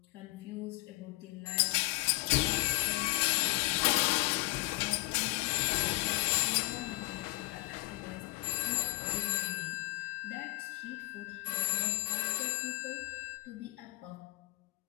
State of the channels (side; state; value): right; quieter; 21.1 dB